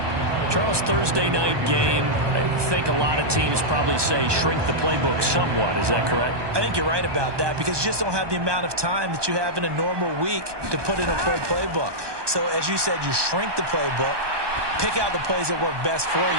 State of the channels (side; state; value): left; late; 1.2 ms